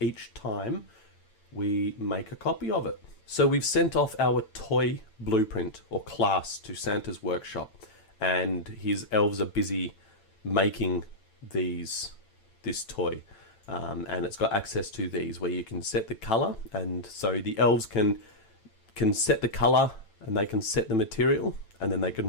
each time we make a copy of it. So we've sent off our toy blueprint or class to Santa's workshop, and his elves are busy making this toy. And it's got access to these where you can set the color, and so the elves can set the color, and they can set the material, and then they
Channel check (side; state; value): right; late; 9.0 ms